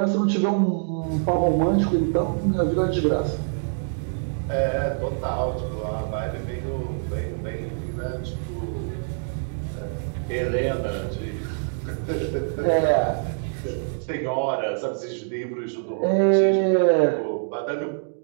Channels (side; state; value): left; silent; digital silence